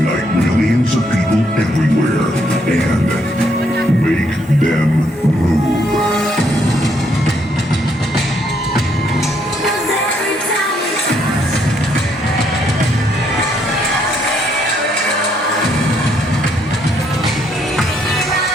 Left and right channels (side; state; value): both; normal; correlation 0.72